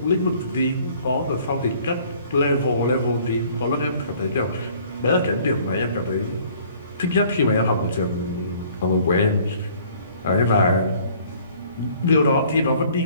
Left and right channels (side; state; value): both; inverted; correlation -0.56